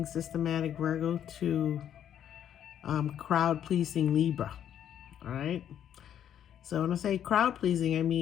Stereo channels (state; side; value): quieter; right; 9.9 dB